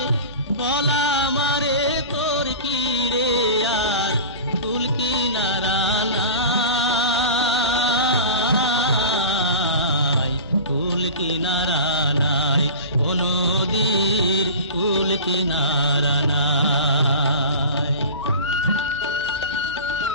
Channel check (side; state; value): both; inverted; correlation -0.34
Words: বলা মারে তোর কি রে আর ফুল কিনারা নাই ফুল কিনারা নাই ও নদীর ফুল কিনারা নাই